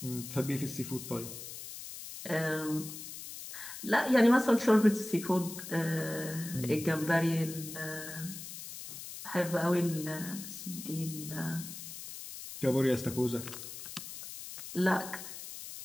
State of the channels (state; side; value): noise; left; hiss, 11 dB below the sound